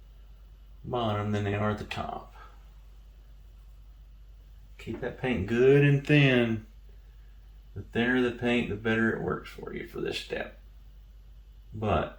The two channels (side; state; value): both; identical; correlation 1.00